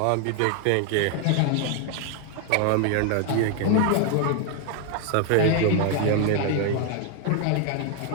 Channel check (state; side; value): different; both; correlation 0.00